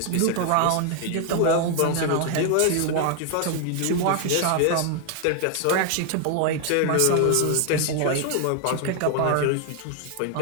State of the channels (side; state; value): both; different; correlation 0.00